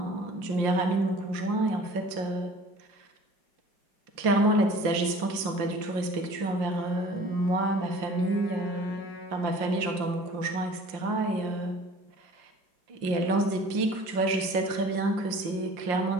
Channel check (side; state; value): left; late; 5.6 ms